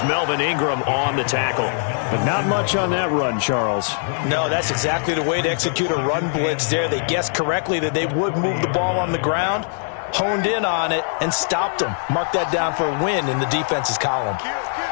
Melvin Ingram on the tackle. But not much on that run, Charles. No, that's exactly the way to execute a run blitz there. They guessed correctly that they would move the ball on the ground, honed in on it, and stopped them. Mark that down for a win in the defense's column.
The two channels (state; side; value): silent; right; digital silence